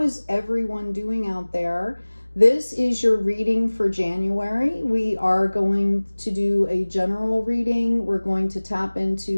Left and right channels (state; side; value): inverted; both; correlation -1.00